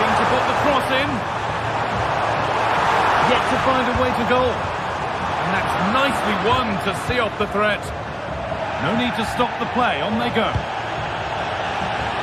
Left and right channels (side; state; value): both; identical; correlation 1.00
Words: to put the cross in. Yet to find a way to goal. And that's nicely won to see off the threat. No need to stop the play. On they go.